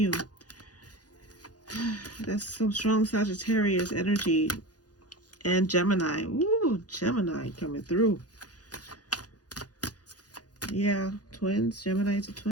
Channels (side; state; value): right; late; 0.68 ms